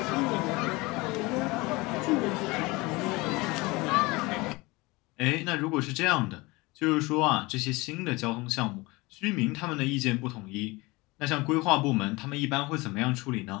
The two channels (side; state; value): right; quieter; 23.4 dB